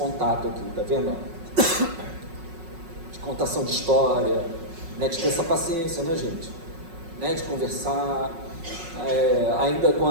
aqui, tá vendo? De contação de história, né? De ter essa paciência, né, gente? Né? De conversar, ainda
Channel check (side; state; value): left; late; 5.4 ms